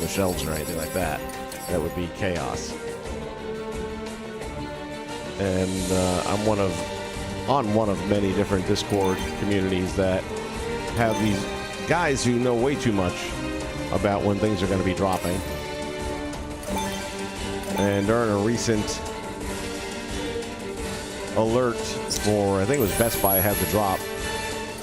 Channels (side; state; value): both; identical; correlation 1.00